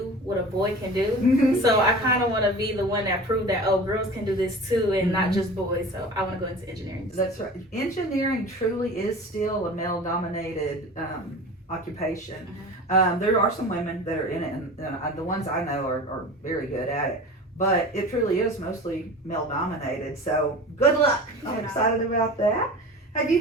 what a boy can do. So I kind of want to be the one that proved that, oh, girls can do this too, and not just boys. So I want to go into engineering. That's right. Engineering truly is still a male-dominated occupation. There are some women that are in it, and the ones I know are very good at it. But it truly is mostly male-dominated. So good luck. I'm excited about that. Have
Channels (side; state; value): both; normal; correlation 0.36